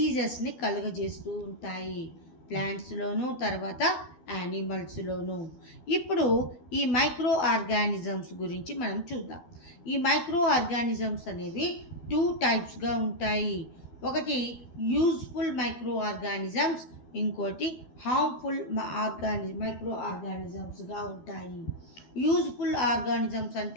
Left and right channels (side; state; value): right; late; 12 ms